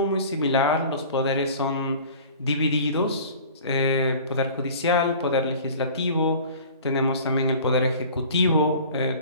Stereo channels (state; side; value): inverted; both; correlation -0.43